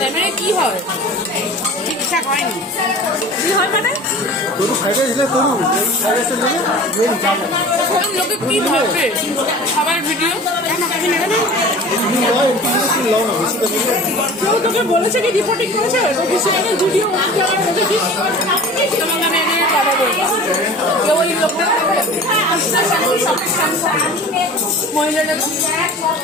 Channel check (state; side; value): normal; both; correlation 0.40